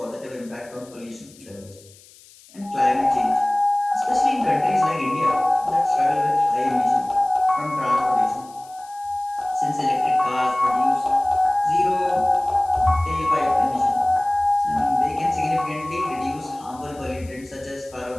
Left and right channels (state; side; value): noise; left; hiss, 24 dB below the sound